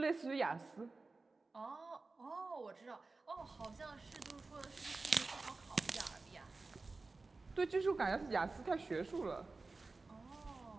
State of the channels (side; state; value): left; quieter; 3.7 dB